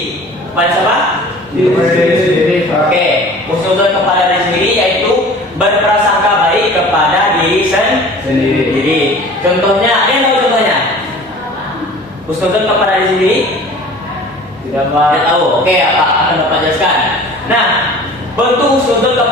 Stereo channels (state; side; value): normal; both; correlation 0.44